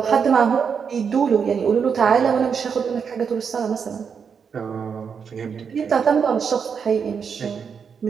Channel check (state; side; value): quieter; left; 6.5 dB